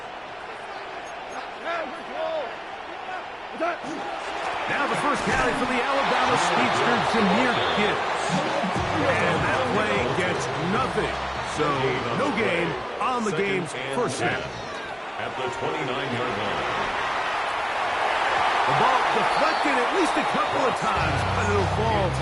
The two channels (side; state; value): both; identical; correlation 1.00